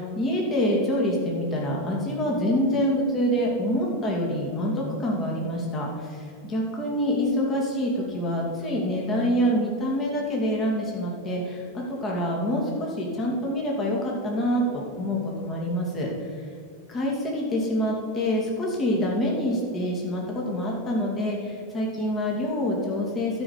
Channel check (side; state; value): both; normal; correlation 0.19